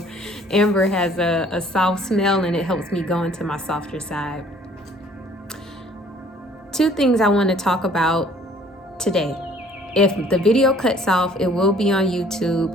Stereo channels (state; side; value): normal; both; correlation 0.56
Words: amber has a soft smell, and it helps me go into my softer side. Two things I want to talk about today. If the video cuts off, it will be on